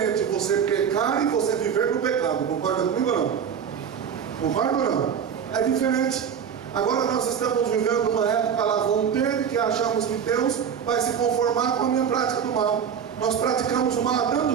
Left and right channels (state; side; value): quieter; left; 7.6 dB